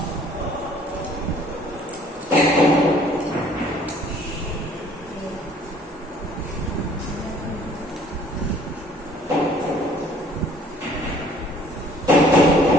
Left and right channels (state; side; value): normal; both; correlation 0.56